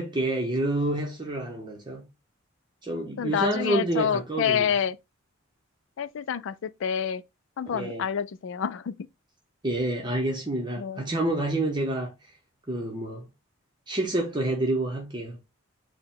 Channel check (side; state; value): both; normal; correlation 0.23